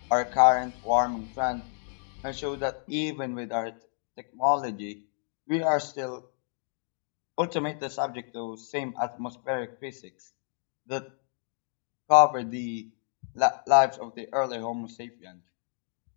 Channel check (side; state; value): right; silent; 58 dB below the other